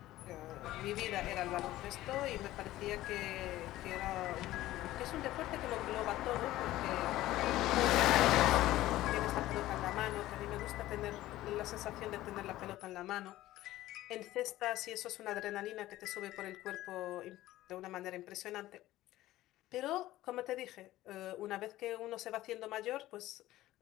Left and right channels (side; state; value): right; quieter; 15.7 dB